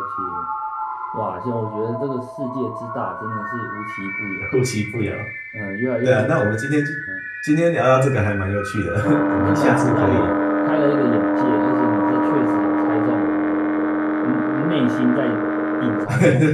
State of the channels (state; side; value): identical; both; correlation 1.00